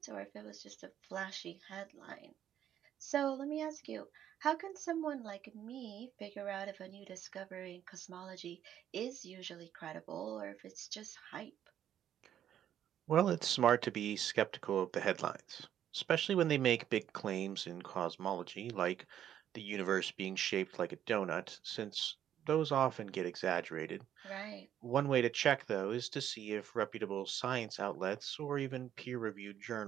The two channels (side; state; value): left; quieter; 10.5 dB